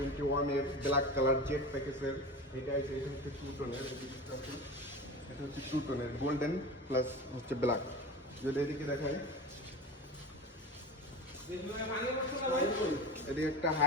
এর ব্ল্যাক কালার জেট প্যাকেজের। এটা হচ্ছে 2 টোনের, এটা হচ্ছে 2 টোনের গোল্ডেন প্লাস হচ্ছে ব্ল্যাক। যদি এদিকে দেখায়, এদিকে একটা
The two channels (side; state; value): both; normal; correlation 0.29